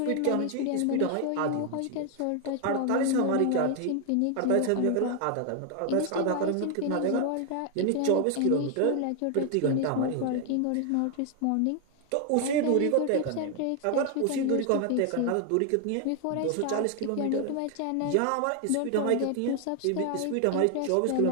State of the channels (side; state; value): both; different; correlation 0.01